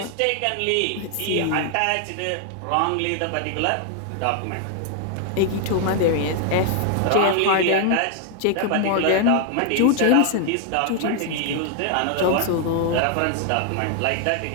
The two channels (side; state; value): both; different; correlation 0.00